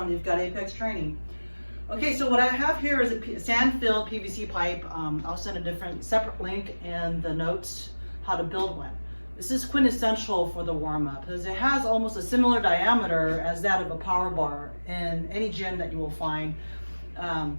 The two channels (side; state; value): both; inverted; correlation -1.00